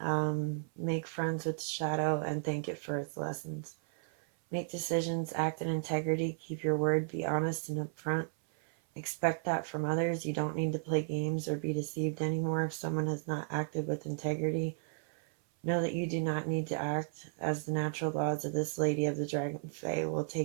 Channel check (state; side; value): silent; left; 55 dB below the other